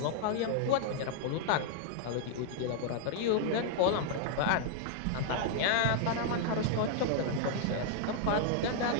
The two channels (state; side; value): different; both; correlation -0.01